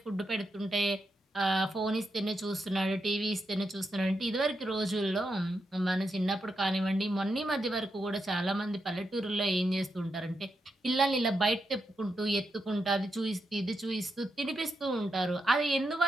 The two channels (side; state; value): both; normal; correlation 0.84